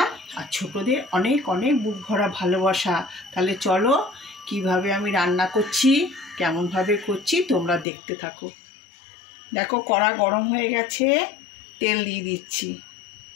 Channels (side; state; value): right; drops out; at 7.9 s